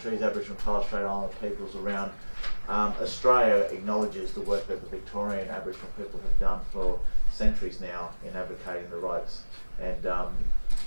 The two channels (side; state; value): both; inverted; correlation -1.00